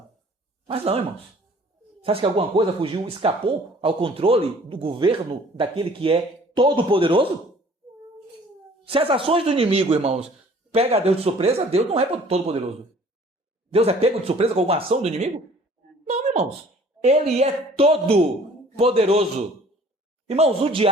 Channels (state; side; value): normal; both; correlation 0.53